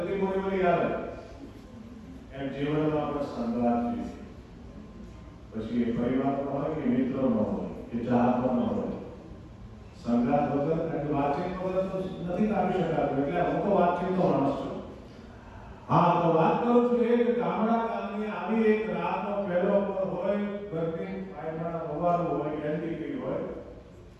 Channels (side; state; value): both; identical; correlation 1.00